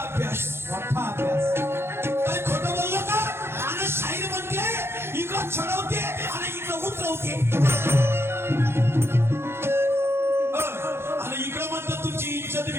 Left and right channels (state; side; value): late; left; 0.12 ms